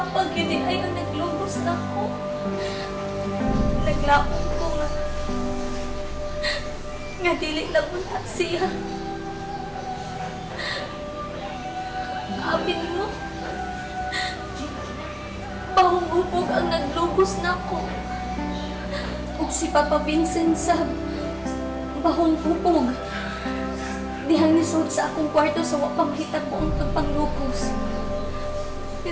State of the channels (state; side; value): identical; both; correlation 1.00